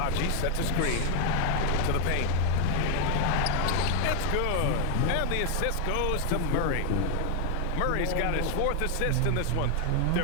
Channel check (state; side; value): different; both; correlation 0.00